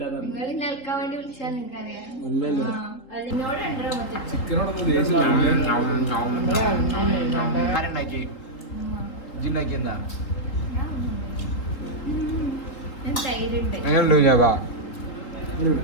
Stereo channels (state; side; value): late; right; 3.8 ms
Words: പറഞ്ഞു നിങ്ങൾ നിൽക്കാൻ വേണ്ടി വിളിച്ചാൽ നിങ്ങൾക്കറിയാം ഇല്ലല്ലോ എന്നോട് ഉണ്ടോ ആരുണ്ടാക്കി ഇജിണ്ടാക്കി എന്താ ഞാൻ തൈരുണ്ട് എങ്ങനെയുണ്ടോ ഞാ